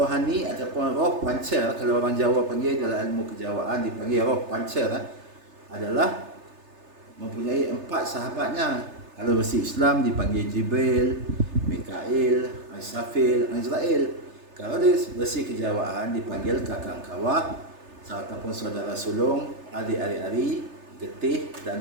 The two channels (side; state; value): left; late; 3.3 ms